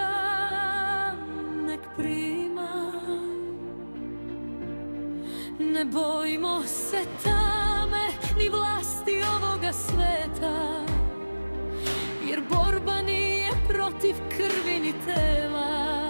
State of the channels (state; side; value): inverted; both; correlation -1.00